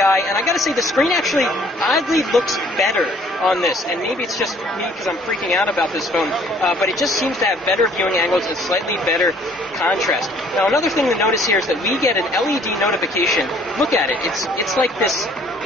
and I gotta say, the screen actually oddly looks better on this, and maybe it's just me because I'm freaking out about this phone, but it just seems to have better viewing angles and slightly better contrast. Now, another thing to notice here is that we get an LED notification. Look at it. It's like this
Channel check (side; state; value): both; normal; correlation 0.58